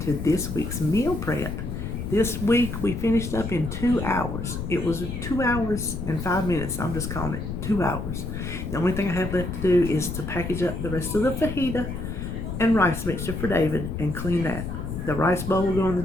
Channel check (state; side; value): noise; left; rumble, 5 dB below the sound